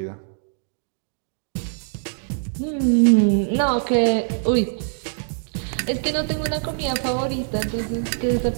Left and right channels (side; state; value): left; silent; digital silence